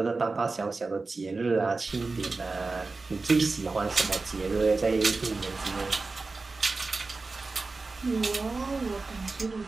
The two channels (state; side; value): quieter; left; 3.8 dB